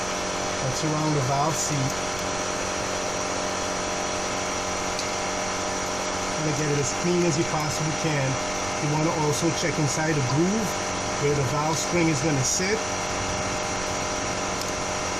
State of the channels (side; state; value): right; noise; rumble, 12 dB below the sound